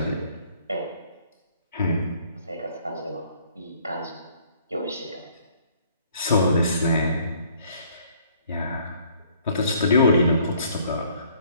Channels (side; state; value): both; inverted; correlation -0.60